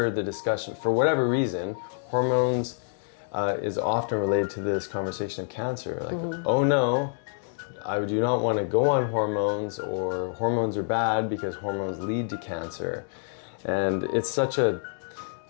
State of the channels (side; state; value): right; silent; 59 dB below the other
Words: the discussion, for whatever reason, hormones is often related to this conversation of cancer. Like, oh no, I do not want to go on hormones, or hormones are bad because hormones lead to cancer. And it's such a